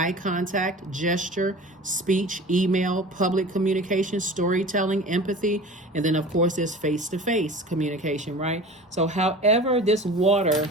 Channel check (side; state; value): both; normal; correlation 0.38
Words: contact, gesture, speech, email, public communication, storytelling, empathy, and then of course there's face-to-face communication, right? So however this water,